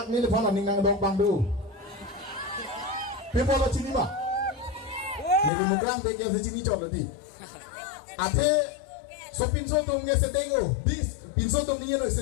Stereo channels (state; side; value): drops out; right; at 5.5 s